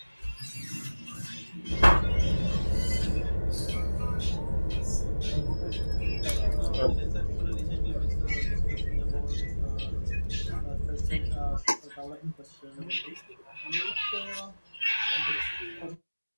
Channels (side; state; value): both; inverted; correlation -1.00